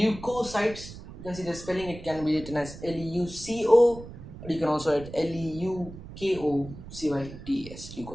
you can see the spelling, it can be written as Leuco, or you can also write Leukocytes,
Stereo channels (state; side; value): noise; right; rumble, 14 dB below the sound